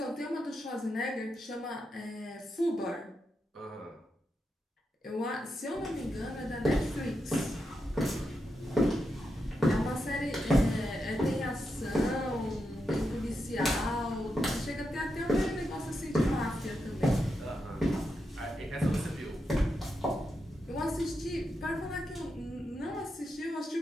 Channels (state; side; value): normal; both; correlation 0.86